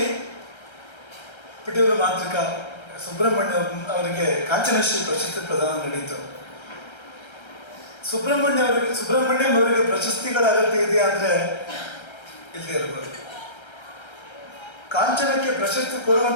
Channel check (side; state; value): right; late; 1.3 ms